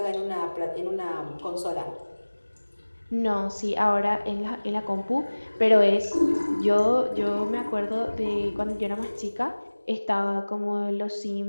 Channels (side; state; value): both; inverted; correlation -1.00